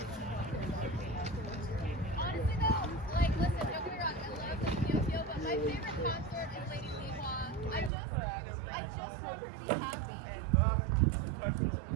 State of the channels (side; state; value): left; drops out; at 7.9 s